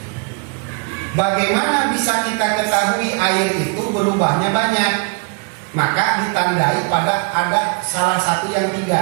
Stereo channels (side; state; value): left; quieter; 36.3 dB